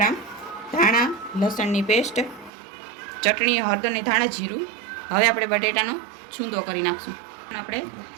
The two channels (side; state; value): left; drops out; at 2.5 s